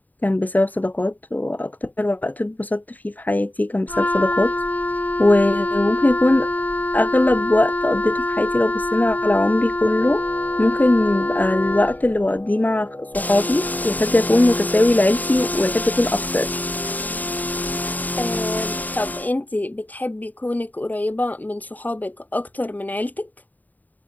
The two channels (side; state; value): right; late; 0.082 ms